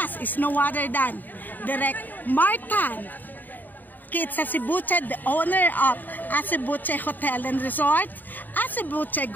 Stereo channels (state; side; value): late; right; 0.088 ms